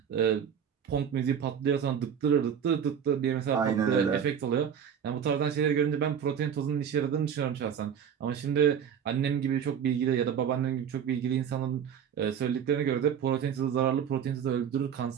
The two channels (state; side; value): quieter; left; 8.1 dB